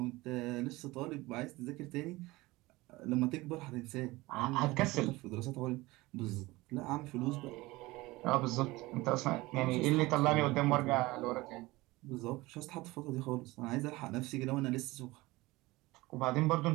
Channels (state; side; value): quieter; left; 20.6 dB